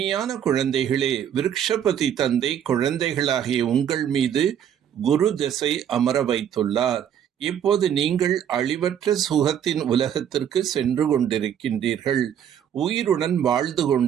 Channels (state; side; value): quieter; left; 9.3 dB